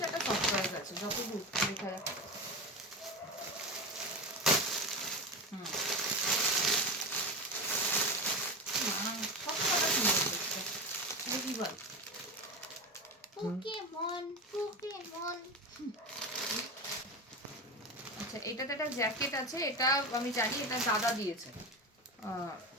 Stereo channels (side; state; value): both; normal; correlation 0.22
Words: একটা সফটওয়্যার আছে, যতদূর দেখা যাচ্ছে। সব কথা সুন্দর দেখতে, দেখি বল। Pokemon Pokemon. আচ্ছা, এটাতে একটা জ্যাকেট আছে, এটা আমি জানি, এটা দাদা দিয়েছে,